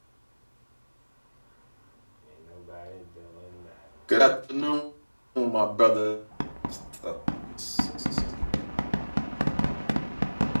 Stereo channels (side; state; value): both; inverted; correlation -1.00